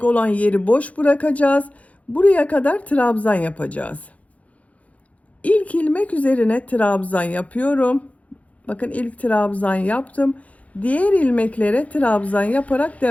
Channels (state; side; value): late; right; 0.068 ms